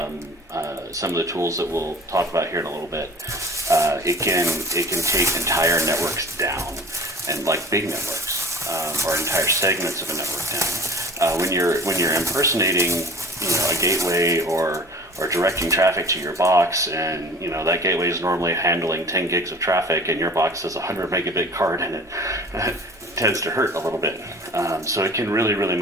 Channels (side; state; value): both; normal; correlation 0.43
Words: of the tools that we'll talk about here in a little bit. It can take entire networks down, and like big networks, or entire segments of a network down. When you're impersonating, a gateway or directing traffic to your box, and that gateway is normally handling 10 gigs of traffic, and your box has a 100 megabit card in it. Tends to hurt a little bit. So it can really, really